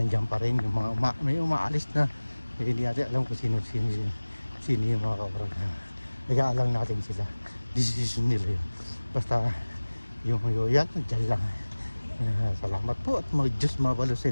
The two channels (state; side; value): inverted; both; correlation -1.00